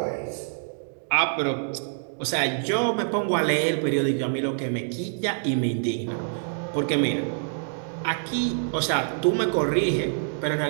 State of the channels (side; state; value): left; silent; digital silence